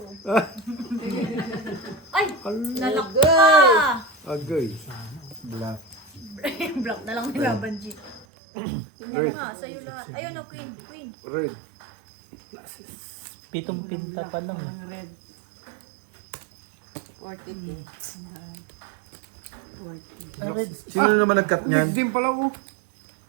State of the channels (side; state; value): left; drops out; at 8.2 s